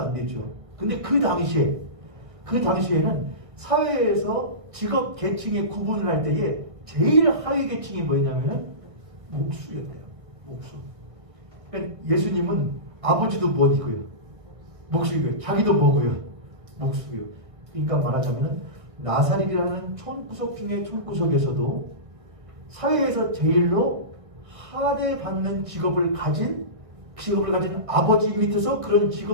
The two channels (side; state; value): left; late; 1.6 ms